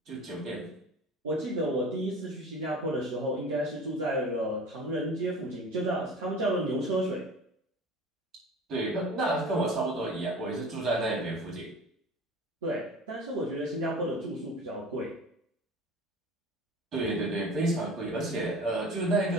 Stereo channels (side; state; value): both; normal; correlation 0.39